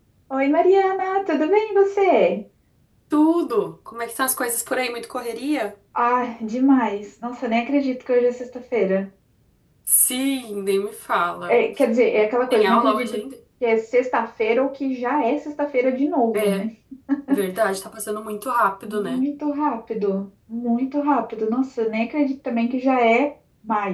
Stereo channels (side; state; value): both; identical; correlation 1.00